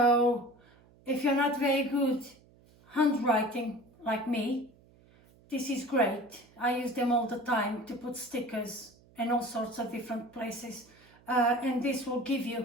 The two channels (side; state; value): right; noise; hum, 28 dB below the sound